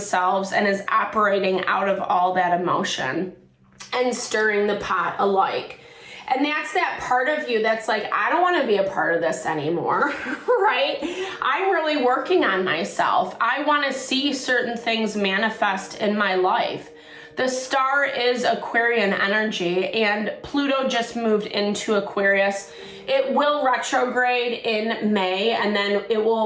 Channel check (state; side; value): identical; both; correlation 1.00